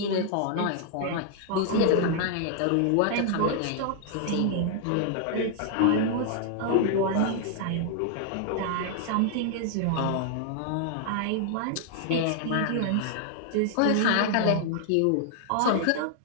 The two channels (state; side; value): different; both; correlation 0.00